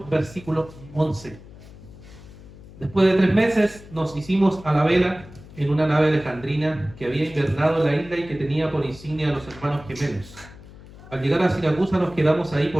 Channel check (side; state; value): left; noise; hum, 19 dB below the sound